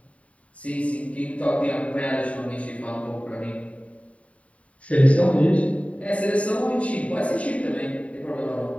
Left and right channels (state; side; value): late; right; 0.066 ms